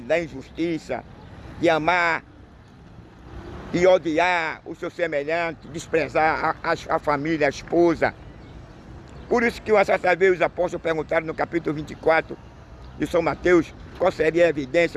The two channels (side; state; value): both; identical; correlation 1.00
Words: da injustiça, de amar e odiar o seu semelhante, desprezar a família, a esposa. Por isso que uma certa vez os apóstolos perguntaram no capítulo 24 de São Mateus qual seria a